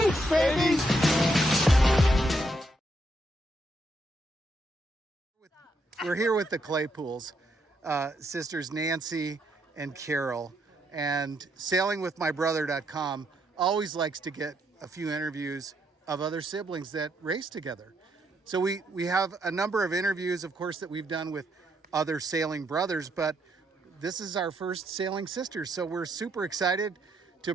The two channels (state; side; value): normal; both; correlation 0.76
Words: baby! We're here with the Claypools, sisters Nancy and Carol, and sailingwithmybrother.com always likes to get a few interviews of other siblings that race together. So we have a number of interviews, of course, that we've done with other sailing brothers, but this is our first Sailing Sisters. So we're super excited to